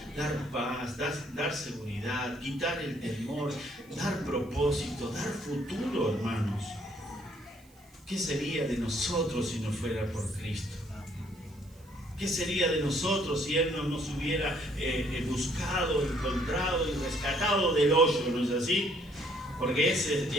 dar paz, dar seguridad, quitar el temor, dar propósito, dar futuro, hermanos. ¿Qué sería de nosotros si no fuera por Cristo? ¿Qué sería de nosotros si Él no nos hubiera buscado, encontrado y rescatado del hoyo, ¿no es así? Porque ese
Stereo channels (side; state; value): right; noise; hiss, 29 dB below the sound